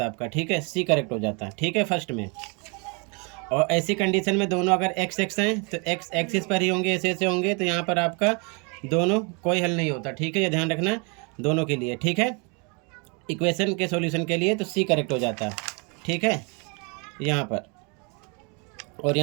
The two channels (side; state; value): left; quieter; 32.6 dB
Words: आपका, ठीक है, सी करेक्ट हो जाता है, ठीक है, फर्स्ट में। और ऐसी कंडीशन में दोनों अगर एक्स एक्स हैं तो एक्स एक्सिस पर ही होंगे, ऐसे होंगे, तो यहाँ पर आपका दोनों कोई हल नहीं होता, ठीक है, ये ध्यान रखना दोनों के लिए, ठीक है, इक्वेशन के सॉल्यूशन के लिए तो सी करेक्ट हो जाता, ठीक है, यहाँ पर, और